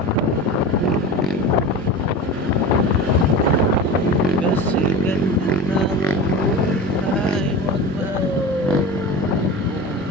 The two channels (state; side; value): normal; both; correlation 0.30